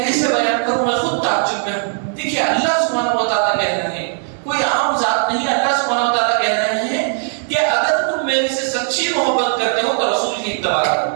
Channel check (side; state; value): left; silent; digital silence